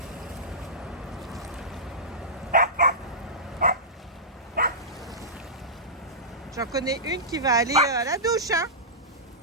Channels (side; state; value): both; normal; correlation -0.17